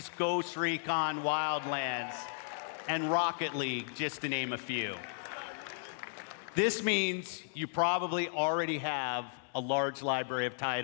Ghost Recon Wildlands, and Rocket League, just to name a few. This means you probably already have a large library of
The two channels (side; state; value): right; silent; 55 dB below the other